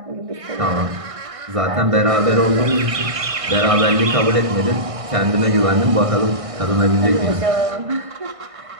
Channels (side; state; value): left; late; 1.6 ms